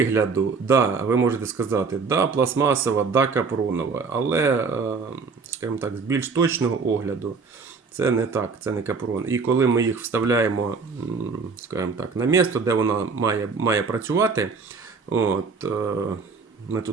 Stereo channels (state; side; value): quieter; left; 4.8 dB